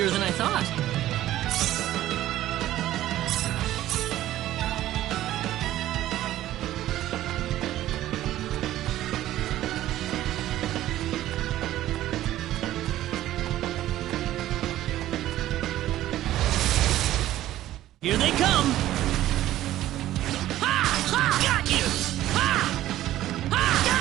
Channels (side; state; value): left; quieter; 14.0 dB